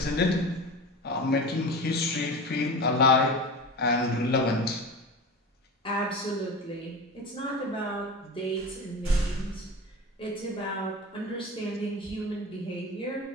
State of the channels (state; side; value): normal; both; correlation 0.30